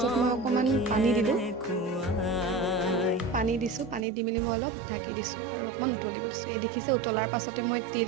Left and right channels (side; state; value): left; drops out; at 4.0 s